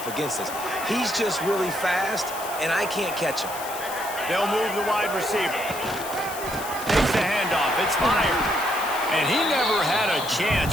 against this. He's just really fast, and I can't catch him. They'll move the wide receiver. Takes the handoff. It's fired. And he never had a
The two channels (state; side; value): noise; left; hiss, 11 dB below the sound